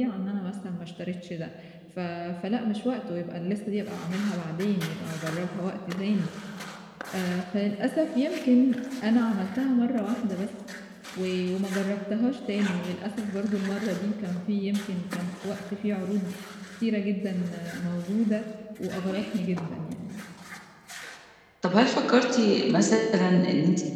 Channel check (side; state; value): both; identical; correlation 1.00